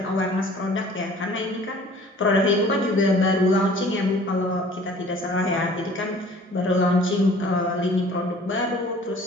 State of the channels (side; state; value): both; normal; correlation 0.50